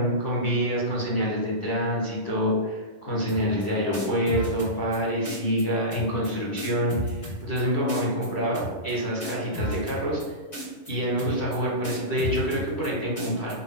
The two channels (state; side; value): late; right; 11 ms